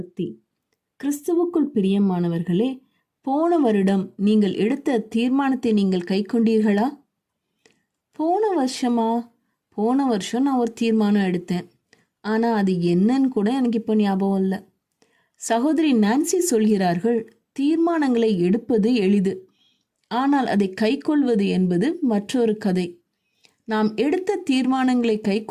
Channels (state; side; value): identical; both; correlation 1.00